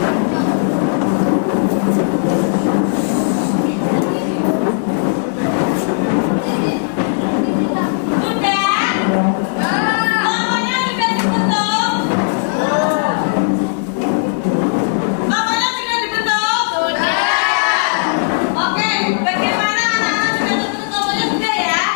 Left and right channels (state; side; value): silent; right; digital silence